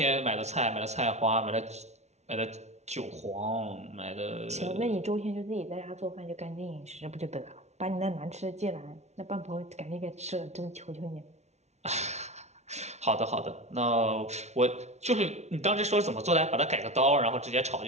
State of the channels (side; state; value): left; late; 0.32 ms